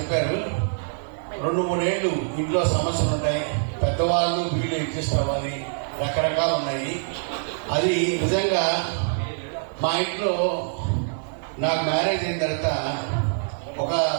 2-3 ఏళ్ళు ఇంట్లో సమస్యలు ఉంటాయి, పెద్దవాళ్ళు వీళ్ళు అడ్జస్ట్ అవ్వాలి, రకరకాలు ఉన్నాయి. అది నిజంగా మా ఇంట్లో నాకు మ్యారేజ్ అయిన తర్వాత ఒక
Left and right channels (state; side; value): silent; left; digital silence